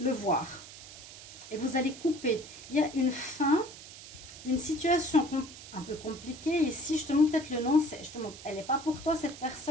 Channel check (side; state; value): right; noise; hiss, 15 dB below the sound